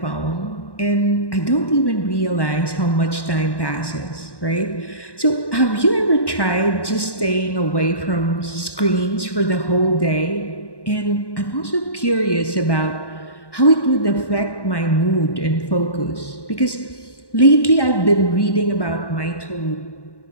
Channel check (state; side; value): late; right; 1.1 ms